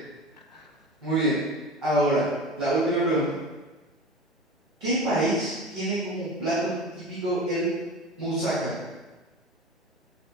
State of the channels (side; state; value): both; normal; correlation 0.33